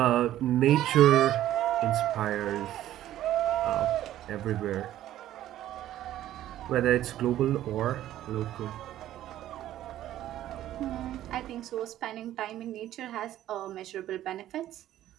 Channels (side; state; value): left; quieter; 13.0 dB